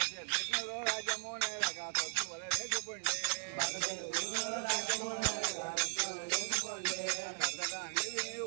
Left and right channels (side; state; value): left; silent; 53 dB below the other